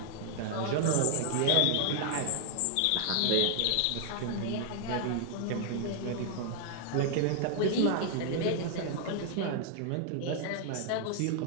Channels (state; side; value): different; both; correlation 0.00